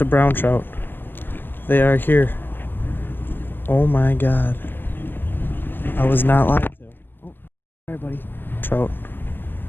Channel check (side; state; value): right; late; 0.096 ms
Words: brown trout. They are here. Oh my god. I was not lied to. Oh, sorry buddy. Trout.